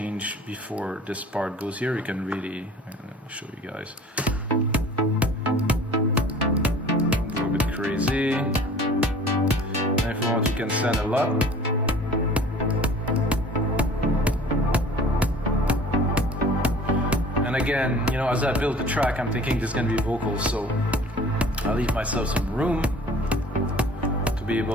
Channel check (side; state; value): both; normal; correlation 0.47